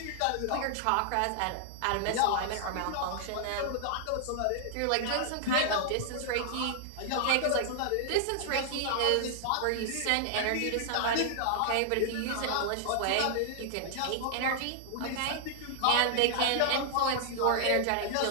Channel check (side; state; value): both; different; correlation -0.01